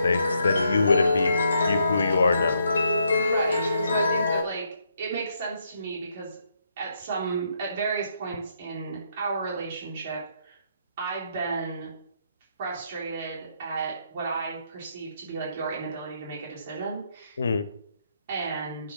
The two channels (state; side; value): inverted; both; correlation -0.76